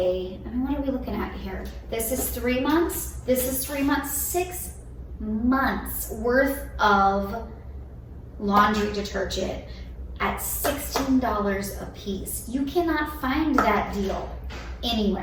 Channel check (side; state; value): both; identical; correlation 1.00